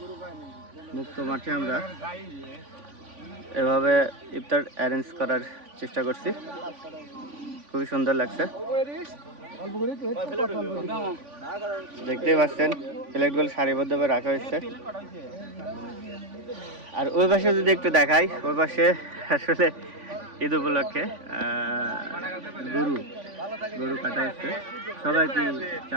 মুক্ত মাঠে আমরা এভাবে ইফতার অ্যারেঞ্জ করার চেষ্টা করছি। খুবই সুন্দর লাগছে, দেখতেই পাচ্ছেন প্লেটগুলো সারিবদ্ধভাবে রাখা হয়েছে। আর ওই পাশে যদি একটু দেখাই, ওই পাশে আসলে ঈদ উপলক্ষে গরু কাটা হচ্ছে। সবাই কি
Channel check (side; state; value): left; late; 3.5 ms